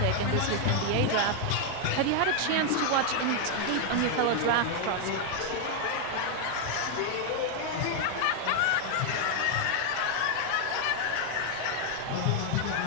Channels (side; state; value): both; different; correlation 0.00